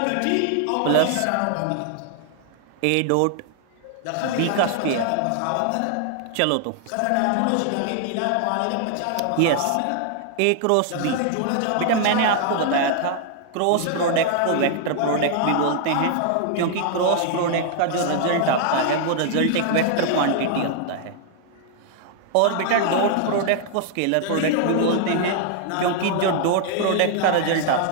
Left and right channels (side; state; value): both; different; correlation 0.00